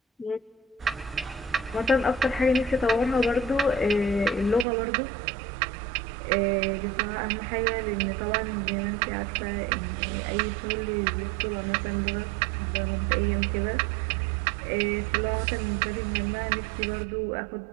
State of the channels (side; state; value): left; drops out; at 4.7 s